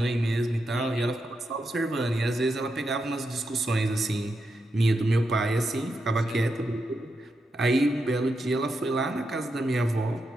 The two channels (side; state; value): both; normal; correlation 0.85